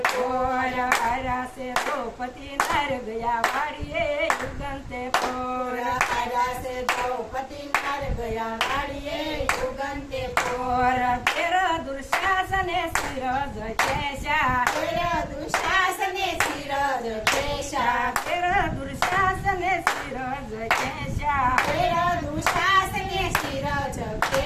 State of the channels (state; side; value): identical; both; correlation 1.00